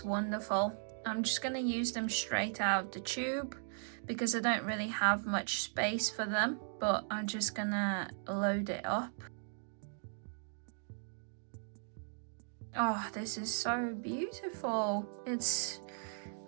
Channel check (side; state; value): left; silent; digital silence